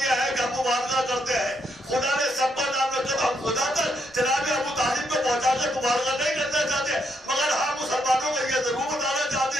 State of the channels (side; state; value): both; normal; correlation 0.77